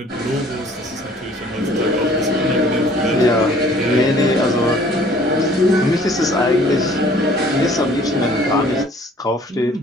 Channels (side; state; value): both; normal; correlation 0.55